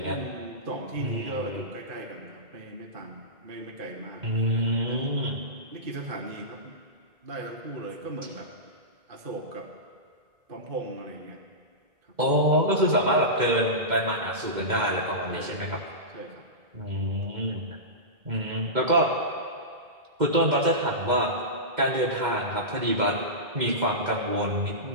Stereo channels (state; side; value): late; left; 2.1 ms